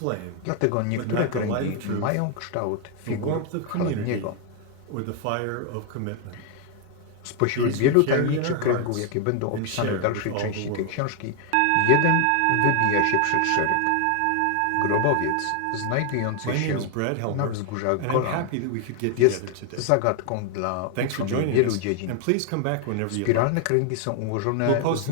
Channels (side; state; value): both; different; correlation 0.00